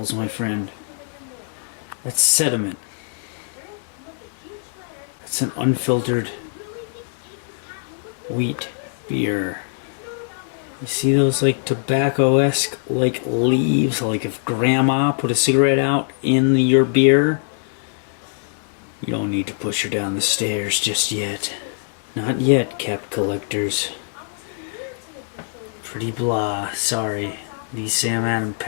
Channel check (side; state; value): right; silent; digital silence